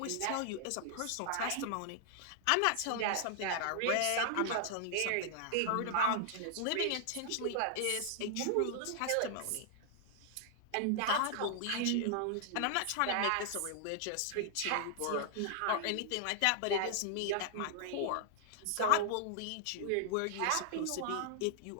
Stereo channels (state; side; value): different; both; correlation -0.01